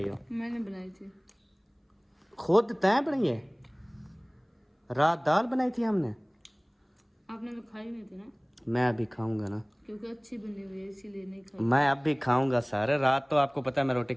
हो? मैंने बनाई थी। खुद तय बनाई है? रात दाल बनाई थी हमने, आपने तो खाई नहीं थी ना? मैं अभी खाऊंगा ना, क्योंकि अच्छी बनी हुई है इसीलिए नहीं खाई। मैं अब भी खाऊंगा सारे। रात तो आपको पता है मैं रोटी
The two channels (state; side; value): identical; both; correlation 1.00